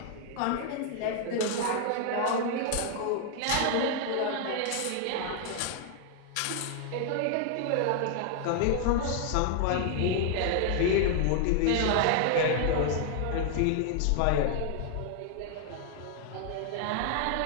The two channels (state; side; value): different; both; correlation 0.00